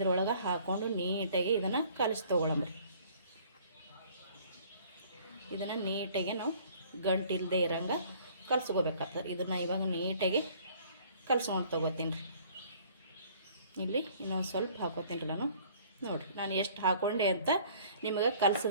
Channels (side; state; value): both; inverted; correlation -0.55